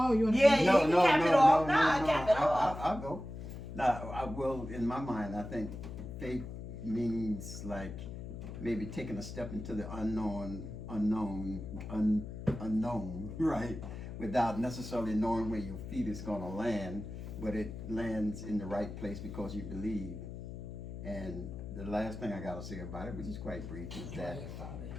you want to? Yeah, no, you no, can cap no, it off. no, Nah, no, cap it off. I'll go. Now, I will. In my mind, I think faith means like maybe taking a step into the unknown, right? Without necessarily knowing where your feet is going to land, but it lands in the right place because you believe. And the last thing I got to say about it, which is quite brief, is that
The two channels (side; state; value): left; noise; hum, 9 dB below the sound